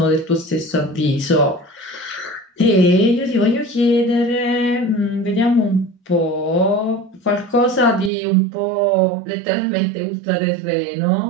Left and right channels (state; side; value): drops out; left; at 8.1 s